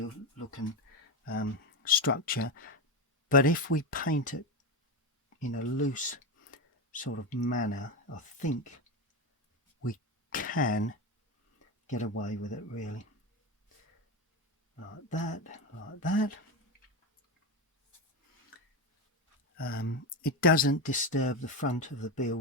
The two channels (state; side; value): normal; both; correlation 0.15